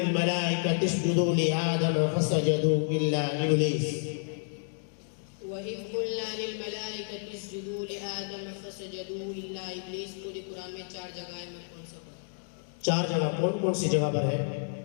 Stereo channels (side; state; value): right; silent; digital silence